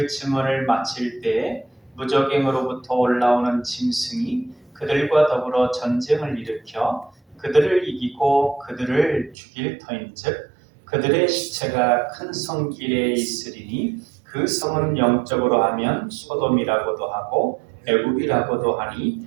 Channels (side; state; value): left; drops out; at 9.3 s